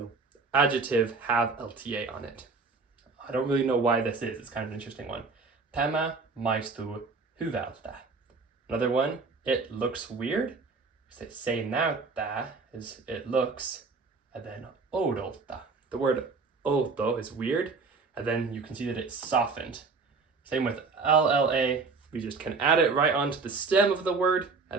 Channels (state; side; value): quieter; left; 4.4 dB